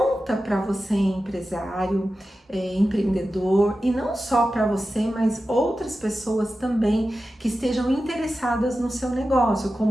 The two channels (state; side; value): normal; both; correlation 0.93